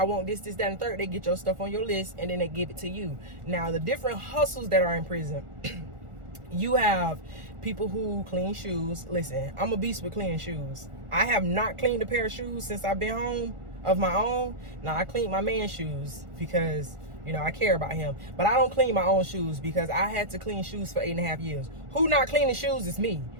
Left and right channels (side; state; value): left; late; 1.4 ms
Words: want this, that, and third, they get your stuff on your list and then they give it to you. Now, the different hustles that are in prison, you have people who clean shoes. Listen, I'm a beast with cleaning shoes. I have not cleaned a pair of shoes since I've been home of my own. Now, I cleaned my man's shoes because, I care about him. But I don't clean my own shoes because I had to clean shoes for 8.5 years. Who not cleaning shoes is me,